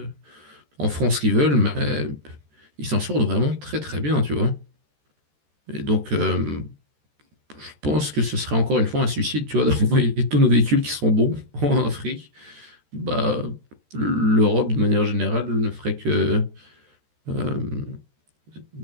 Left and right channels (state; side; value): late; left; 13 ms